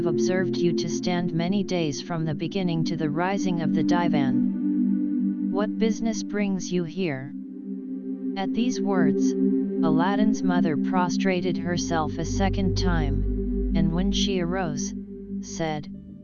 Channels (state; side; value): identical; both; correlation 1.00